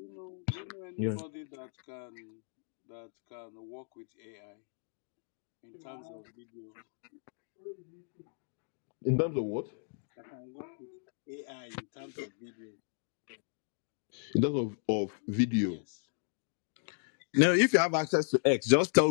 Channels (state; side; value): silent; right; digital silence